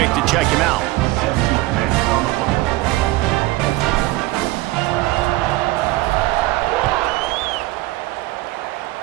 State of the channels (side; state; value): left; quieter; 18.7 dB